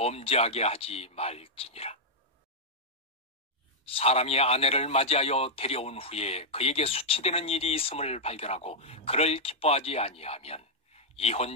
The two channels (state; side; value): normal; both; correlation -0.06